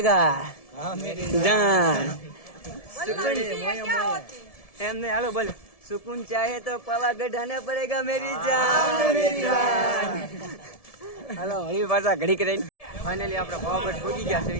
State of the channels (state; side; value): late; right; 1.7 ms